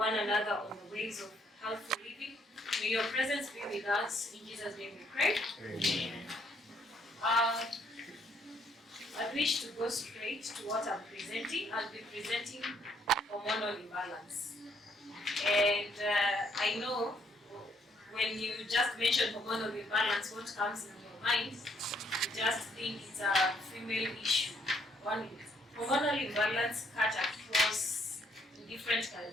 another on the ways of healthy living, may your presence be with us. In Jesus' name we pray. Amen. I wish to go straight to what I'm presenting. I'll be presenting hormonal imbalance. And I know when you just mention hormonal imbalance, what comes in your mind, you just think it's a female issue. Hormonal imbalance cut across different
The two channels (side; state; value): both; normal; correlation 0.69